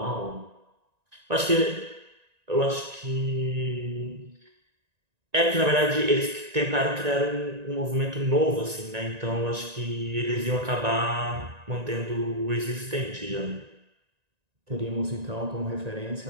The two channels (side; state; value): left; late; 1.9 ms